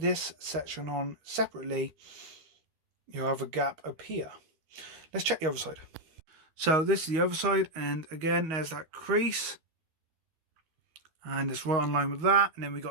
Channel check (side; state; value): left; late; 13 ms